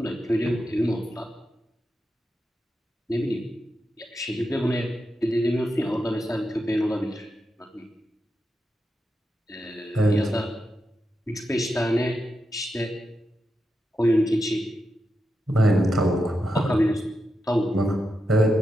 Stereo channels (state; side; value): normal; both; correlation 0.87